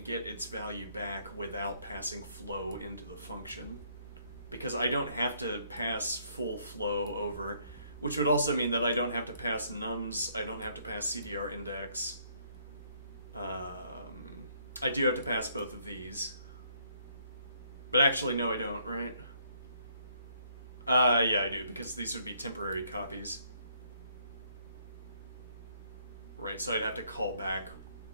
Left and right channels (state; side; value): inverted; both; correlation -0.67